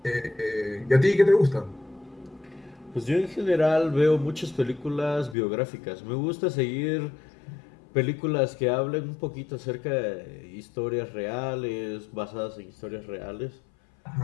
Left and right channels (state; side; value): drops out; right; at 5.4 s